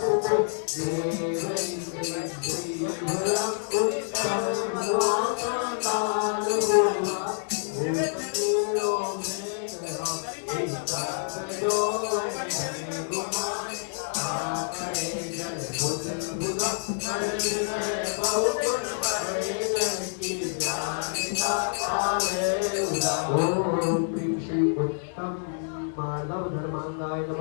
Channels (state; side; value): silent; right; digital silence